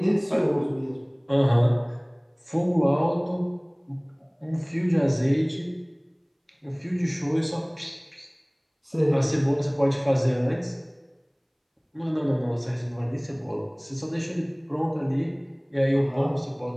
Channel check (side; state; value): both; identical; correlation 1.00